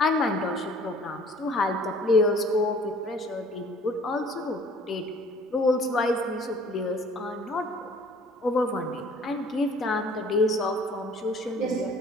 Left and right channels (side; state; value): both; normal; correlation 0.53